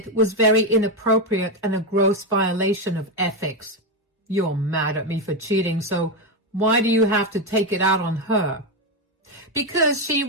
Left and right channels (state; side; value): normal; both; correlation 0.09